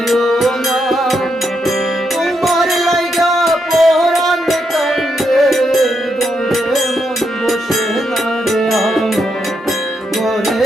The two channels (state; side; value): normal; both; correlation 0.81